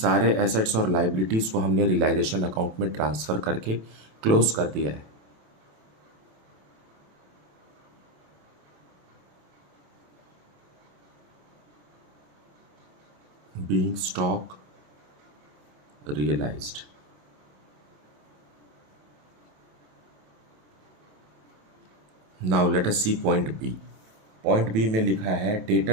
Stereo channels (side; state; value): left; late; 27 ms